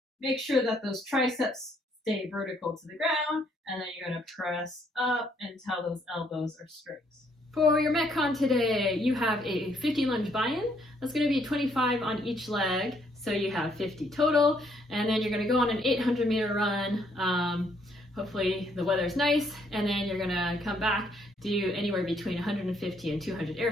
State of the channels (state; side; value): normal; both; correlation 0.69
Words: Make sure that those triceps stay vertical to the ground, and then you're going to press up until those elbows are straight. For your Metcon today, you have a 50 lunge buy-in. That's going to be 25 on each leg, so you have 50 total. And then you're going to go on an 800-meter run. Hopefully the weather's nice, and then you're going to come back, do anywhere between 150 and 200 air